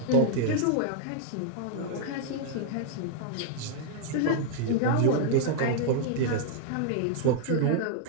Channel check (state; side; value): different; both; correlation -0.01